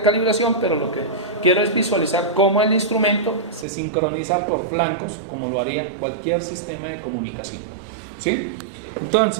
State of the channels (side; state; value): left; drops out; at 3.7 s